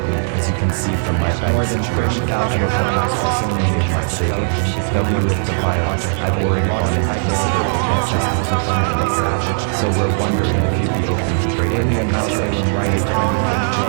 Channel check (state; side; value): silent; left; digital silence